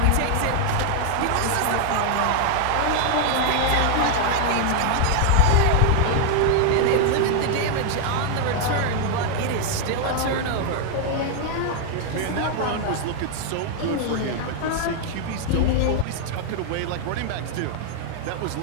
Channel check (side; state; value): both; different; correlation 0.00